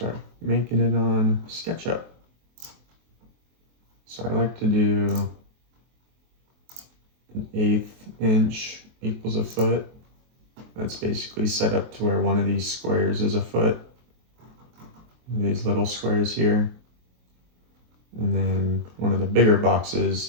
making it on SketchUp. So I like to do an 1/8 inch equals a foot. That's basically set up to where one of these squares is a foot. These little squares here. And then one of the bigger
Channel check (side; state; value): left; late; 23 ms